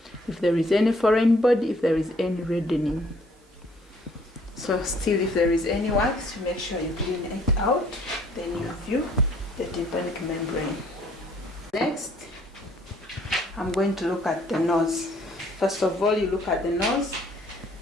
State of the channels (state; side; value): normal; both; correlation 0.61